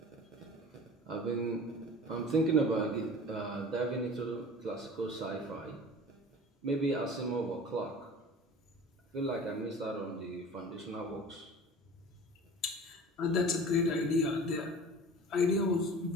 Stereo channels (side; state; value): both; normal; correlation 0.40